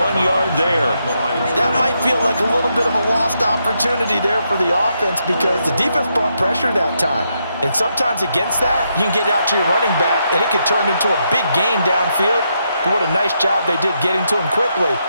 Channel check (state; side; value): inverted; both; correlation -0.80